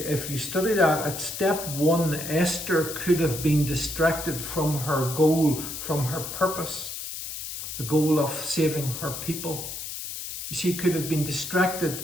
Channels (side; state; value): left; noise; hiss, 7 dB below the sound